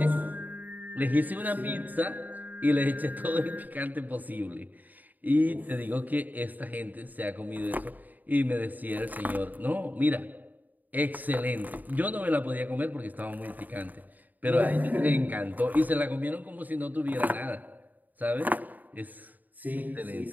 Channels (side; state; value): left; late; 0.083 ms